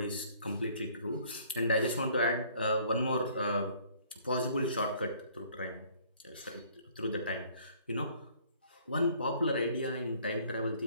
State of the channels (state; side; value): inverted; both; correlation -0.59